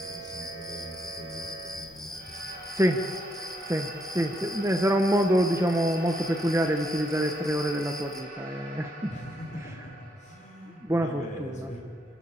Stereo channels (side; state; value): both; normal; correlation 0.75